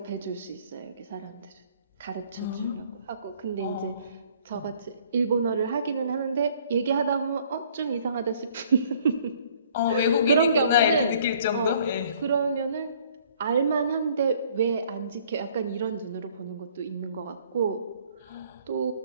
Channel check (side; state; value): both; inverted; correlation -0.58